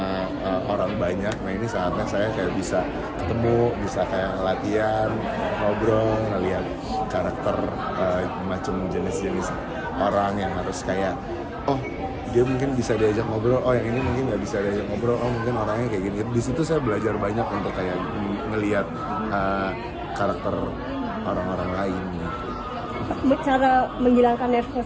orang banyak. Nah ini saatnya saya kayak bisa ketemu, bisa kayak latihan, ngobrol, ngeliat karakter macam jenis-jenis orang yang harus kayak, oh dia mungkin bisa diajak ngobrol, oh yang ini mungkin nggak bisa diajak ngobrol, oh mungkin orangnya kayak gini. Di situ saya belajar banyak untuk kayak ngeliat karakter orang-orang lain gitu. Cara menghilangkan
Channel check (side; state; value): both; identical; correlation 1.00